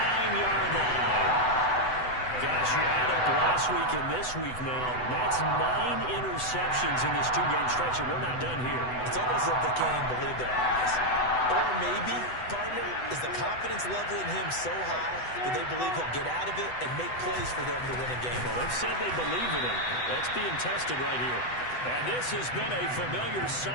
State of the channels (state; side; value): late; right; 8.0 ms